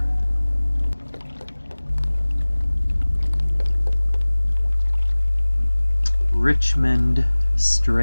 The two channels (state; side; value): inverted; both; correlation -1.00